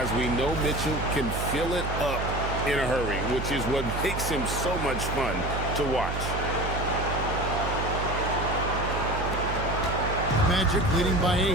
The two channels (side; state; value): right; noise; hum, 4 dB below the sound